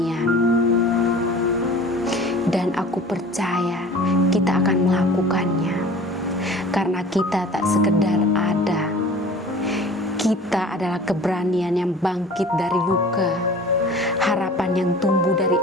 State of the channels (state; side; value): normal; both; correlation 0.43